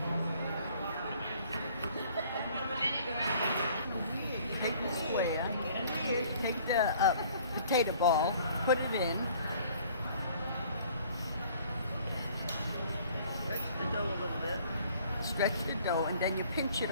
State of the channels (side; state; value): both; inverted; correlation -0.55